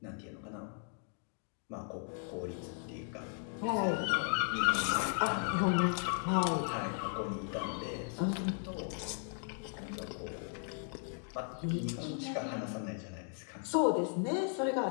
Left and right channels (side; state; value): right; silent; 53 dB below the other